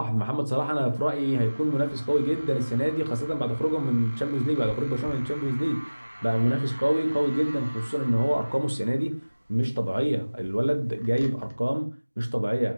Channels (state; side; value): inverted; both; correlation -1.00